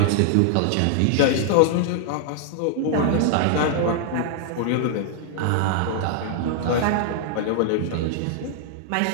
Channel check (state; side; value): different; both; correlation -0.01